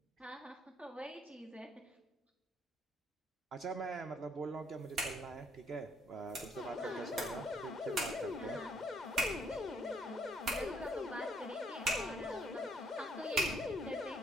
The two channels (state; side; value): normal; both; correlation 0.68